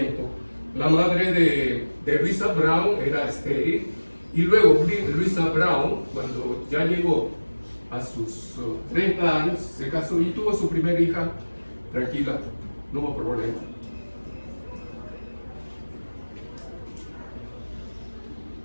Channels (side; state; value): both; inverted; correlation -1.00